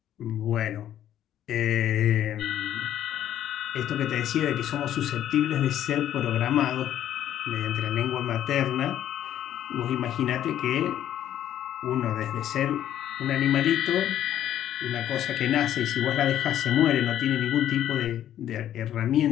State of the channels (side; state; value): right; quieter; 11.4 dB